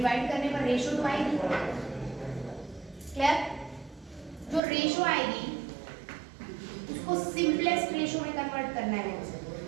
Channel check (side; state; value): left; drops out; at 4.6 s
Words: करने पर रेशो तो आएगी। क्लियर। जो रेशो आएगी उसको सिंपलेस्ट रेशो में कन्वर्ट करना है।